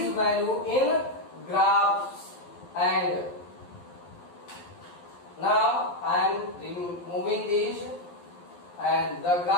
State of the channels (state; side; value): late; right; 11 ms